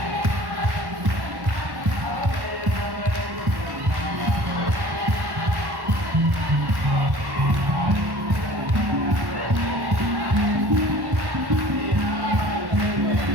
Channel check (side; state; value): left; late; 1.1 ms